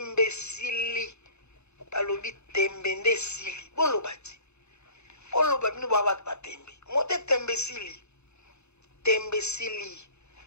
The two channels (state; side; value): late; right; 0.81 ms